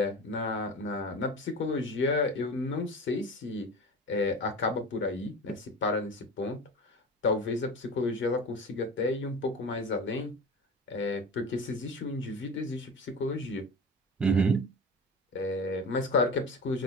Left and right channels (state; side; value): normal; both; correlation 0.32